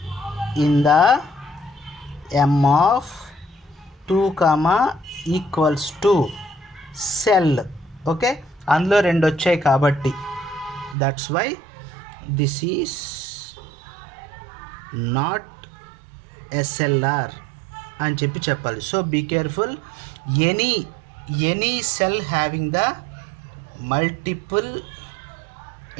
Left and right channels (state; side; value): drops out; left; at 11.0 s